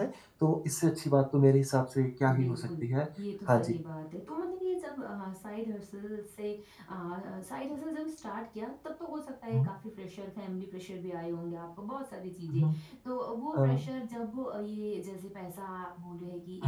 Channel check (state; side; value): identical; both; correlation 1.00